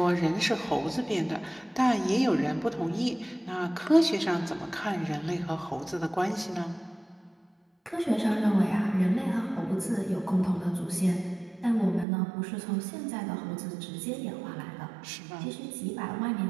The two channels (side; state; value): left; drops out; at 12.1 s